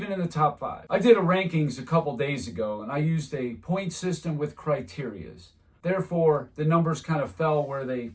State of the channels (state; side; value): identical; both; correlation 1.00